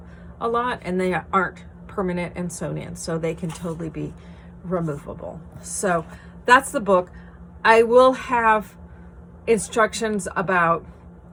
a lot, and they aren't permanent and sewn in, so they can totally be removable. So that's the book. I will have further instructions about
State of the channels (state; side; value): identical; both; correlation 1.00